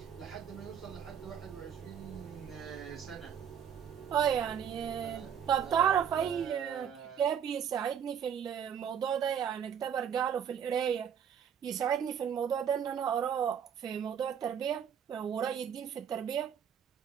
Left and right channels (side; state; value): left; quieter; 8.3 dB